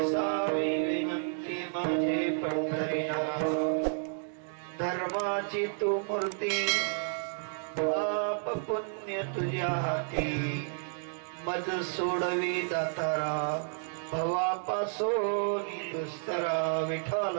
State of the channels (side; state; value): left; silent; digital silence